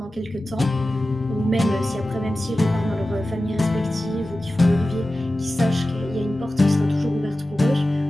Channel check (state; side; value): normal; both; correlation 0.95